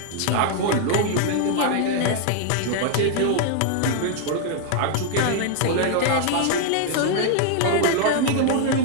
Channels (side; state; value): both; different; correlation 0.00